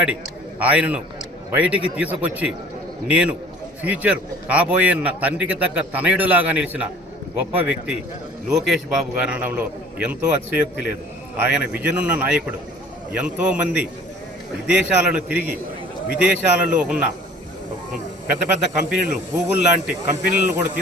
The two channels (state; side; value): normal; both; correlation 0.50